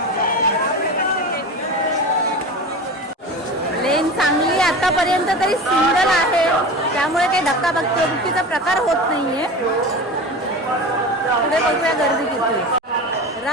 लेन चांगली आतापर्यंत तरी सिंगल आहे, त्यामुळे काही धक्काबुक्कीचा प्रकार होत नाहीये. पुढे बघूया गर्दी किती आहे.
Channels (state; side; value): normal; both; correlation 0.30